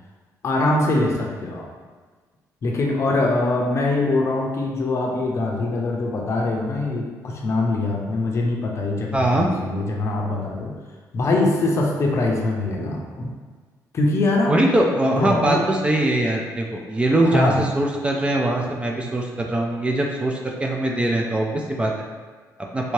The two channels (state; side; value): normal; both; correlation 0.76